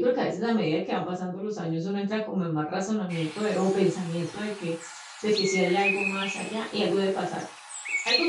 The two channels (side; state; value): both; identical; correlation 1.00